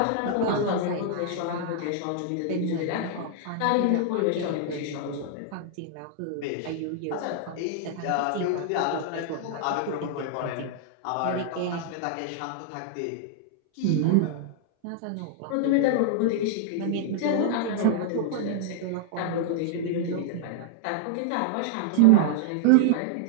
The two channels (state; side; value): different; both; correlation -0.01